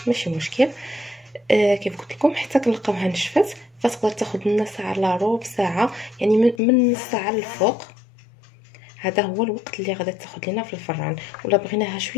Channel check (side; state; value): right; drops out; at 6.6 s